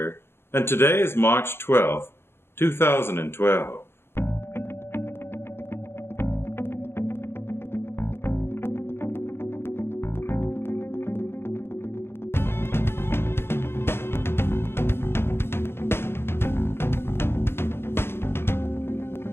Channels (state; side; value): late; right; 0.11 ms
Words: And today is March 12th, 2012.